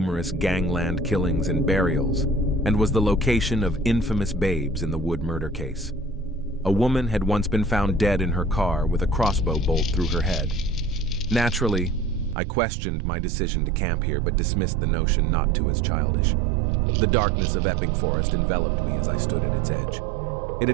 gangland killings and burials, and was the location of infamous babes in the Wood murder case. A woman had once been found dead in her car with a crossbow bolt through her head. Naturally, I questioned my decision to camp here, but dismissed the notion not too as childish. The darkness of Epping Forest enveloped me as I stood at its edge. It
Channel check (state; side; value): drops out; left; at 12.4 s